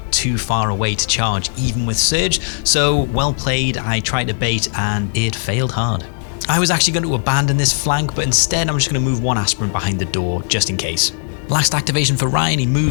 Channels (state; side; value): silent; right; 67 dB below the other